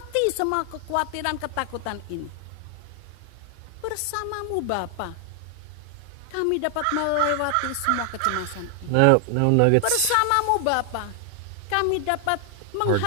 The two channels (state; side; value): different; both; correlation 0.00